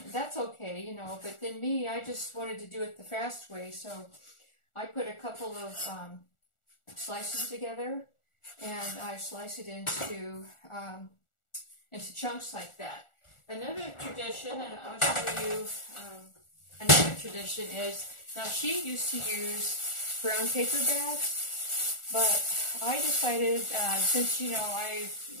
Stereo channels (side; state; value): right; late; 1.4 ms